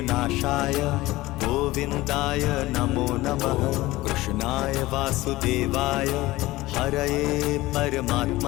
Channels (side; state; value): right; quieter; 18.6 dB